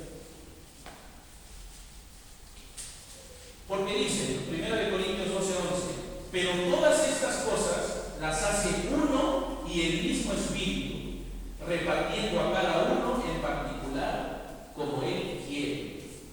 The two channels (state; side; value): identical; both; correlation 1.00